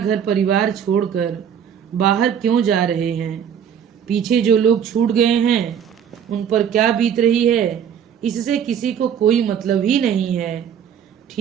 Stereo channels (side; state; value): left; quieter; 8.4 dB